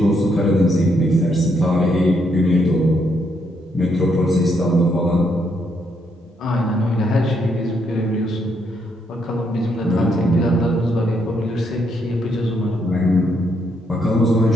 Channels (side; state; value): both; normal; correlation 0.75